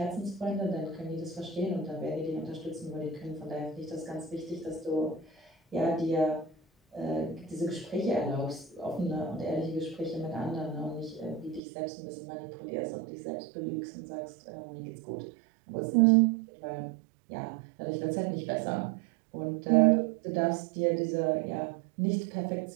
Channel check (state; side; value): drops out; left; at 11.6 s